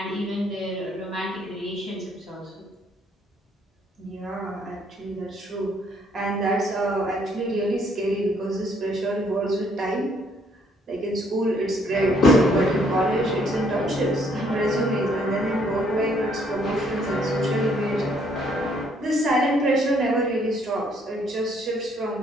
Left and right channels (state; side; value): normal; both; correlation 0.67